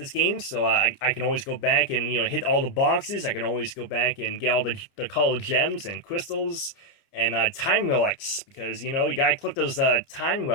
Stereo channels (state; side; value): late; right; 29 ms